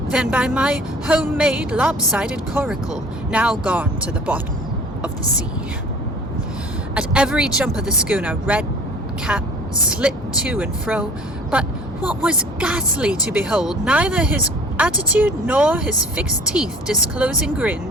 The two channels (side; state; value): both; normal; correlation 0.47